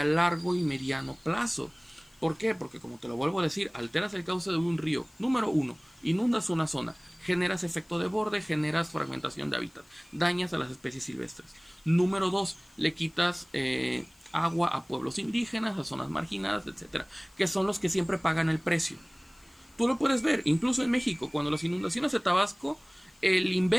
largo y mediano plazo. ¿Por qué? Porque, como te lo vuelvo a decir, alteras el cauce de un río. Número 1, inundas una zona, generas efecto de borde, generas fragmentación de hábitat, dañas a las especies silvestres. Número 2, le quitas agua a pueblos indígenas, a zonas marginadas, etcétera, que son los que siempre pagan el precio. Tú lo puedes ver, incluso en México, cuando las inundaciones de Tabasco, el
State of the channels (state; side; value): noise; left; hiss, 30 dB below the sound